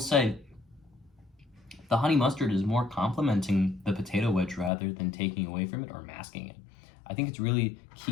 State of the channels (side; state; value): right; drops out; at 4.7 s